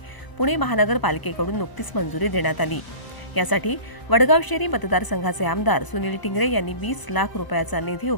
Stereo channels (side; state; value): right; late; 1.0 ms